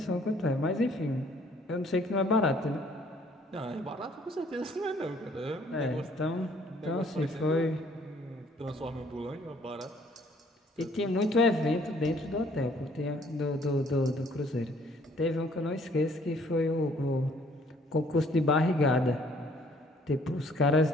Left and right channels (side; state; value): both; normal; correlation 0.61